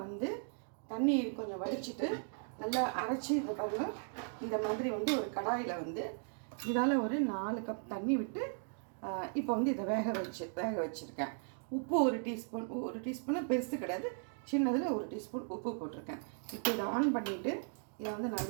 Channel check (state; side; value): silent; left; 53 dB below the other